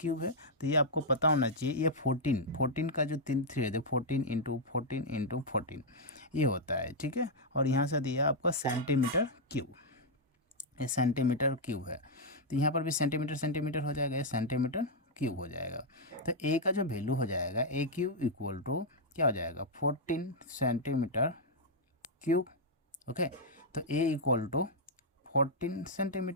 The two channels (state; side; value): normal; both; correlation -0.04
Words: है, तो ये आपको पता होना चाहिए। ये 14 का जो 3 है, 14 इंटू 14 इंटू 14 ये होता है, ठीक है। और यहाँ से दिया आपका सेंटीमीटर क्यूब, ये सेंटीमीटर क्यूब है। तो यहाँ पर भी सेंटीमीटर सेंटीमीटर हो जाएगा, ये सेंटीमीटर क्यूब हो जाएगा। तो ए का जो वैल्यू हो जाएगा, ए क्यूब इक्वल टू क्या हो जाएगा? 14 सेंटीमीटर क्यूब। ओके, तो ए इक्वल टू 14